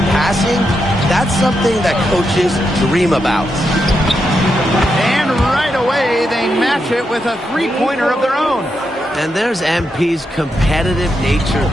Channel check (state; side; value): normal; both; correlation 0.84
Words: passing, that's something that coaches dream about. And right away, they match it with a three-pointer of their own. And there's MP's competitive nature